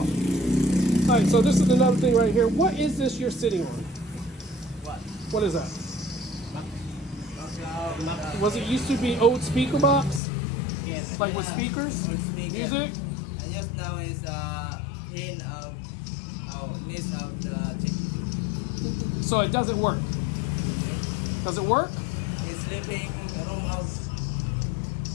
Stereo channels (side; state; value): right; drops out; at 10.2 s